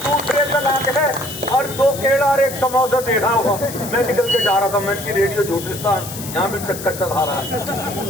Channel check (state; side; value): noise; left; hiss, 11 dB below the sound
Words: का लाके है और 2 केला और 1 समोसा दे रहा होगा, मैं निकल के जा रहा था, मैं की रेडियो झूठिस्तान यहाँ भी चक्कर चला रहा